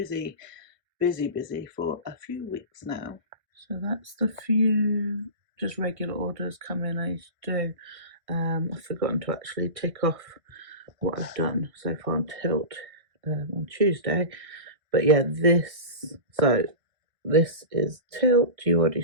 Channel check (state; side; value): late; left; 1.6 ms